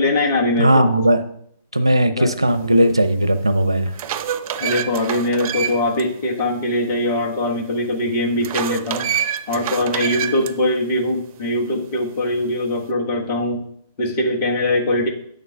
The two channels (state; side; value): inverted; both; correlation -0.62